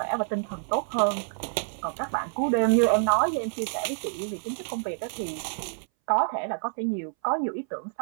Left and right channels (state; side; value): silent; left; 60 dB below the other